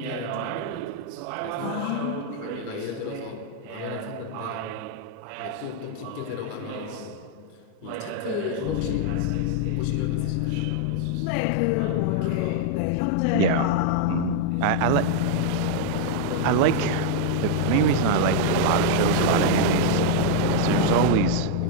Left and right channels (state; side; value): different; both; correlation 0.00